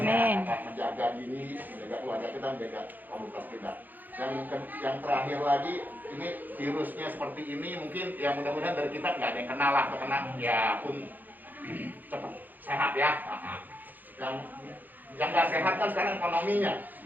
Menjaga diri, menjaga keluarga kita, menjaga komunitas kita. Dan yang terakhir lagi, ini virusnya seperti ini, mungkin ya mudah-mudahan dari kita nggak ada yang kenal lah, kena ya pun cepat sehat ya. Yang nggak sehat kan sekarang ekonominya.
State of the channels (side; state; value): left; late; 0.085 ms